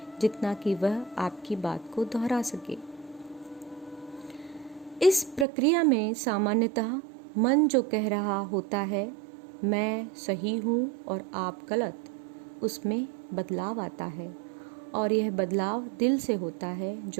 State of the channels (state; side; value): drops out; left; at 5.5 s